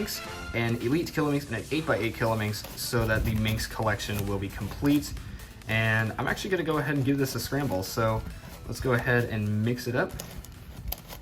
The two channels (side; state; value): both; identical; correlation 1.00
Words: an Elite Kilominx, and an 8x8 Kilominx, so that the Minx collection will be complete. And I'm actually going to go ahead and give this a scramble, so let's go ahead and mix it up.